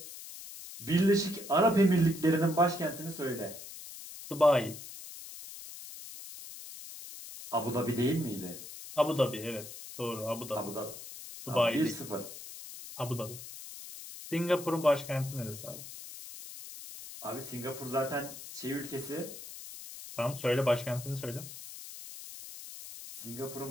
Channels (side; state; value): left; noise; hiss, 12 dB below the sound